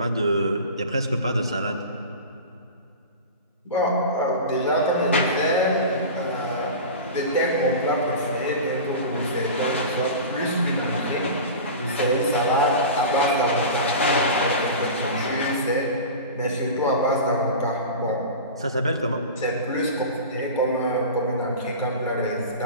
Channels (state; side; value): inverted; both; correlation -0.31